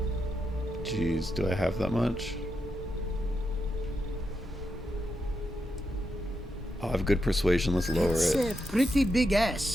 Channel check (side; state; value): both; normal; correlation 0.84